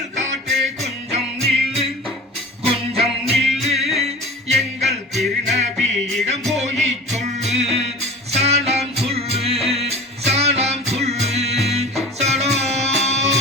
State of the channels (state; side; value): normal; both; correlation 0.37